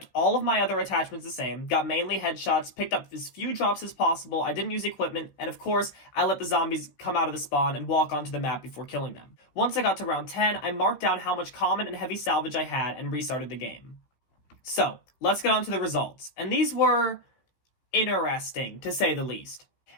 all of my other attachments the same, got mainly headshots, picked up as few drops as possible, I didn't use equipment, and of course, I let the zombies come out of the spawn and walk onto the map before killing them. Once I got to round 10, I marked down how much common and heavy salvage I had and restarted the game. So, let's get on to the results, and these were interesting, to say the least.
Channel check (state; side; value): late; right; 16 ms